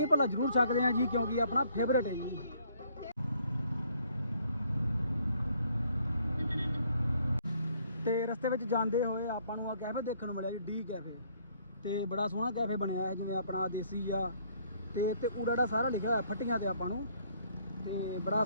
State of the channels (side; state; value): both; inverted; correlation -0.64